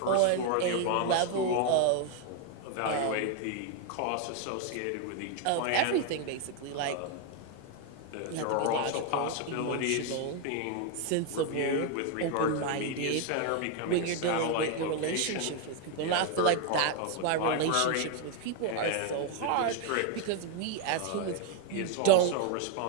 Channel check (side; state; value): both; different; correlation 0.01